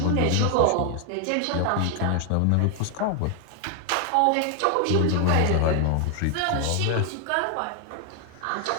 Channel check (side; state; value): both; different; correlation 0.00